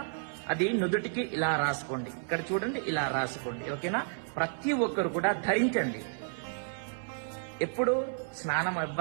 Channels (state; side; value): silent; left; 57 dB below the other